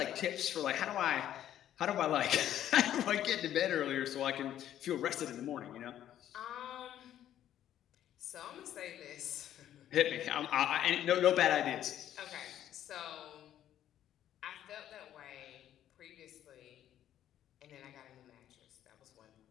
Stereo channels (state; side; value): quieter; right; 11.4 dB